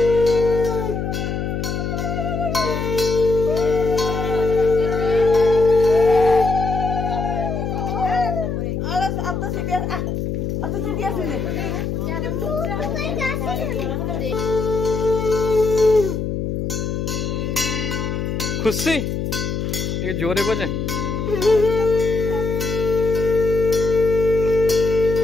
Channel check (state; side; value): noise; left; hum, 2 dB below the sound